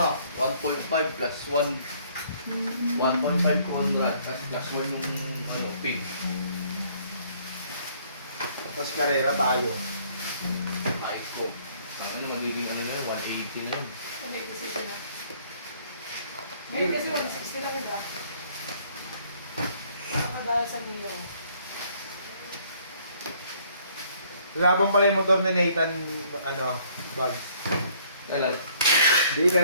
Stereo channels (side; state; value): both; inverted; correlation -0.62